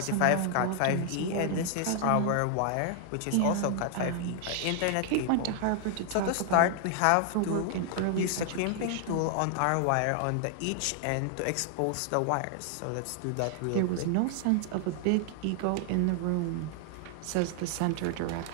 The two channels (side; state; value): both; different; correlation 0.00